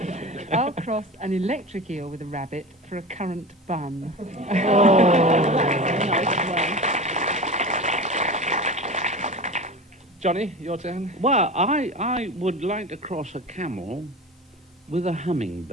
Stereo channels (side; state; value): both; normal; correlation 0.31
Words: I'll cross an electric eel with a rabbit for a currant bun. Johnny, your turn. Well, I would like to cross a camel with a